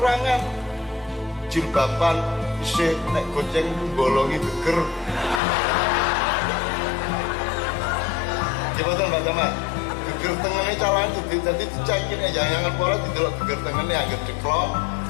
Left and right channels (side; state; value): right; drops out; at 5.4 s